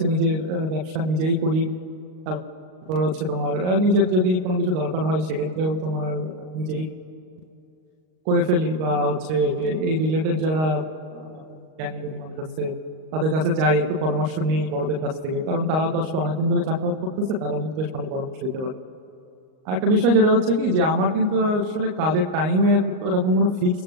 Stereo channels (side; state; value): left; late; 38 ms